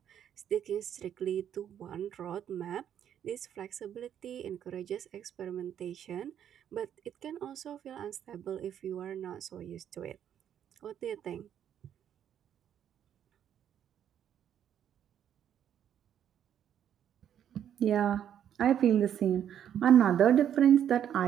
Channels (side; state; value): left; quieter; 9.7 dB